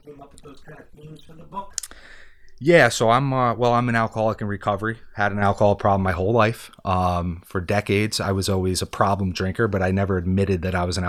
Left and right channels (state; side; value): identical; both; correlation 1.00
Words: up with those kind of themes for the book? Yeah, so I'm an alcoholic in recovery. Had an alcohol problem my whole life. For decades, I was always a problem drinker, but I never admitted that I was an